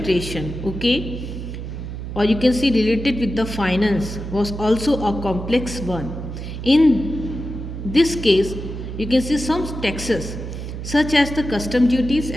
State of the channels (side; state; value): right; noise; hum, 7 dB below the sound